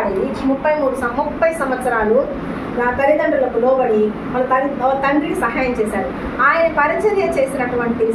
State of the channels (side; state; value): both; identical; correlation 1.00